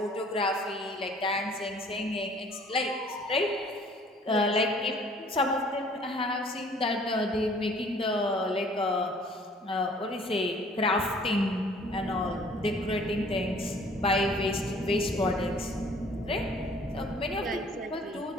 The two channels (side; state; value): both; normal; correlation 0.55